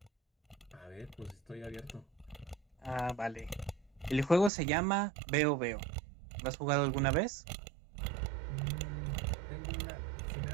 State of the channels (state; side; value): drops out; left; at 4.5 s